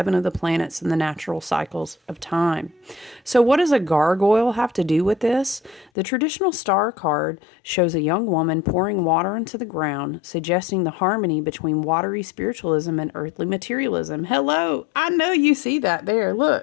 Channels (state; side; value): drops out; right; at 5.9 s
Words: of the planets in the natural cycles of time. So what does a gargoyle have to do with this? The traditional star card shows a young woman pouring water into the ground, suggesting the harmony between watery spiritualism and earthly materialism. Hello, I know you see that there.